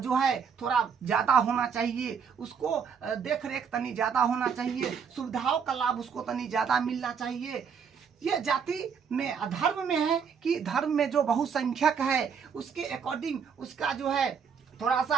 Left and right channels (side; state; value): left; quieter; 6.7 dB